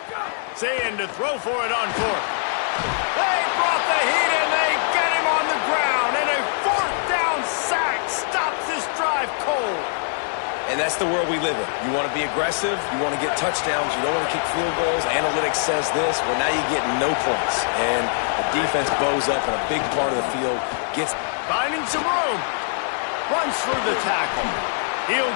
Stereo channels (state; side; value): silent; right; digital silence